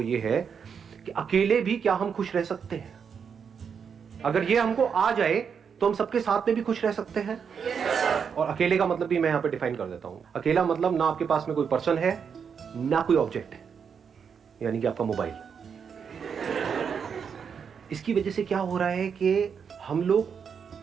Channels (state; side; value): quieter; left; 6.8 dB